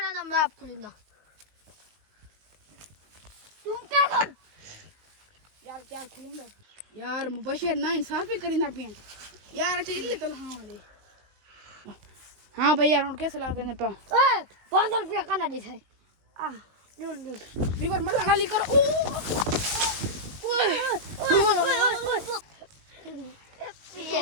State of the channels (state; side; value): late; left; 19 ms